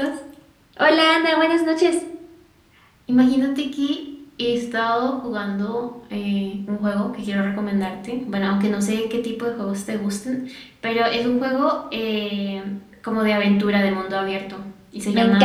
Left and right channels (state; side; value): identical; both; correlation 1.00